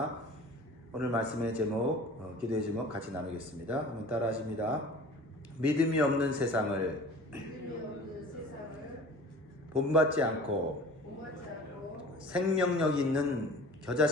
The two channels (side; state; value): both; normal; correlation 0.43